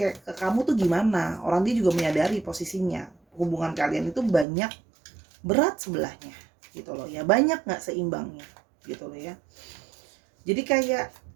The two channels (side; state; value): left; drops out; at 4.5 s